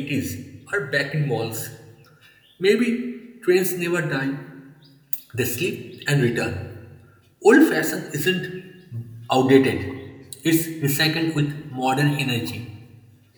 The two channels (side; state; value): both; identical; correlation 1.00